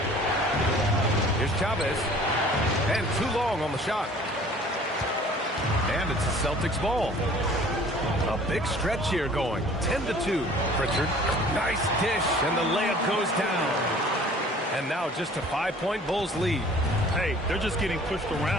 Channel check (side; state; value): both; normal; correlation 0.50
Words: Here's Chavez. And too long on the shot. And it's a Celtics ball. A big stretch here going. 10-2. Pritchard. Nice dish, and the layup goes down. And now just a 5-point Bulls lead. Hey, they're just getting pushed